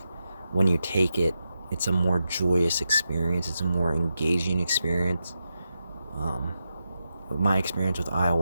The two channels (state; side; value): inverted; both; correlation -0.87